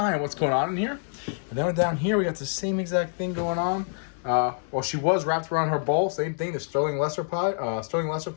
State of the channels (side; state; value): right; silent; 61 dB below the other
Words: on what's going on in here. And then down here, we got the same exact thing going on. Well, she was wrapped around her bowl. Same thing, the Sterling Lesser clown